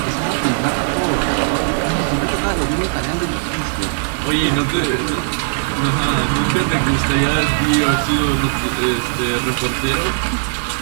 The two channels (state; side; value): silent; left; digital silence